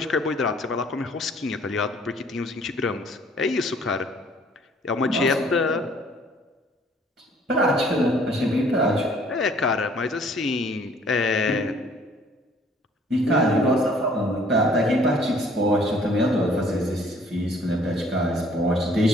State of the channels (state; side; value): normal; both; correlation 0.58